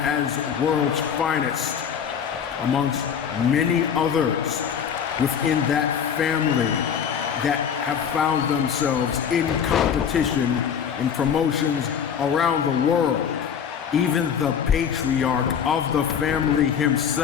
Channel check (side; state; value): right; quieter; 7.7 dB